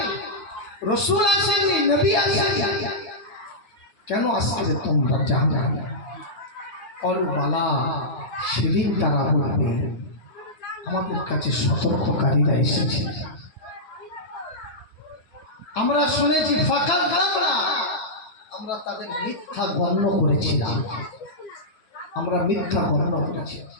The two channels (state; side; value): late; right; 9.2 ms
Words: রাসূল আসেনি, নবী আসেনি, কেন আজকে তোমরা জাহান্নামে? ক্বালু বালা, সেদিন তারা বলবে আমাদের কাছে সতর্ককারীরা এসেছে, আমরা শুনেছি ফাকাযযাবনা, আমরা তাদের মিথ্যা গণ্য করেছিলাম, আমরা মিথ্যা গণ্য করেছি।